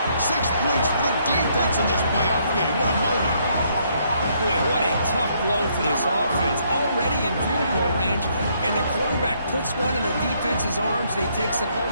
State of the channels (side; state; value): both; inverted; correlation -0.70